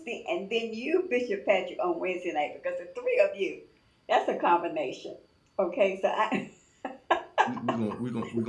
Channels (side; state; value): both; identical; correlation 1.00